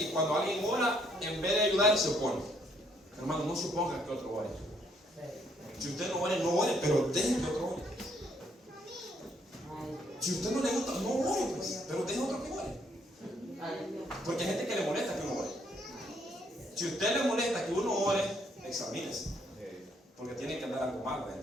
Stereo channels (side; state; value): both; normal; correlation 0.69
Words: cuando alguien ora, en vez de ayudar, se opone. Hermano, no suponga que otro ore. Si usted no ore, pero deje que otro ore. Si usted no le gusta, no ore, pues, pero deje otro que ore. Porque hay gente que le molesta que uno ore. Si a usted le molesta que uno ore, examínese. Porque tiene que andar algo mal